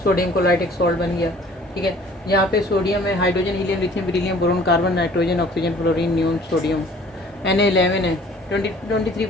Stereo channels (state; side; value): normal; both; correlation 0.53